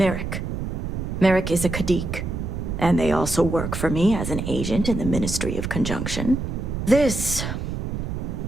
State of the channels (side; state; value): right; noise; rumble, 4 dB below the sound